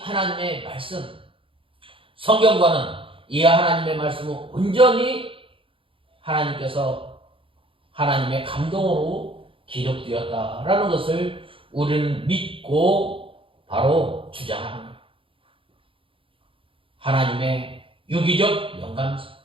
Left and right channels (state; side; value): late; left; 0.26 ms